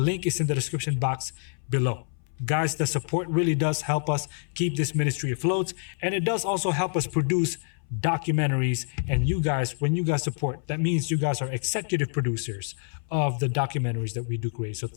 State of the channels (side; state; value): right; silent; 60 dB below the other